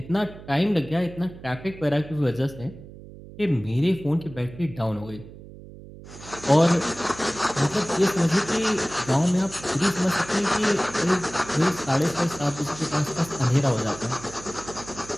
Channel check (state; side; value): noise; right; hum, 17 dB below the sound